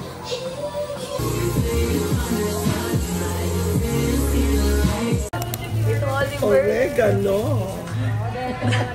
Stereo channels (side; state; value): both; identical; correlation 1.00